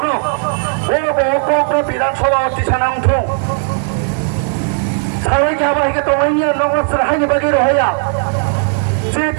ও কক বিধানসভা অতি সানা উঠুং সারাই গাবা হিকে তংনাইনি নগর সাহাইনি বাকি রহয়া যে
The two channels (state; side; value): silent; left; 64 dB below the other